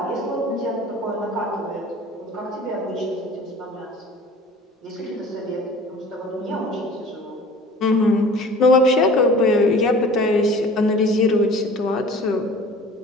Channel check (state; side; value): normal; both; correlation 0.44